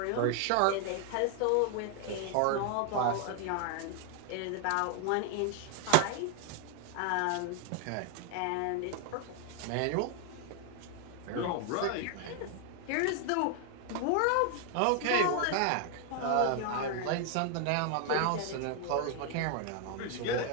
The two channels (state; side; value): different; both; correlation 0.00